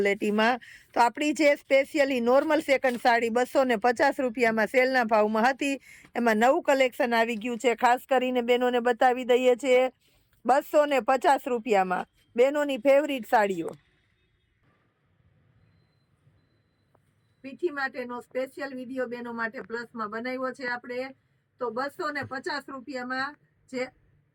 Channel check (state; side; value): identical; both; correlation 1.00